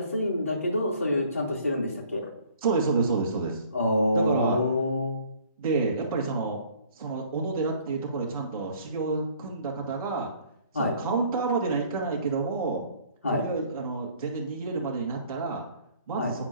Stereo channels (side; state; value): both; inverted; correlation -0.56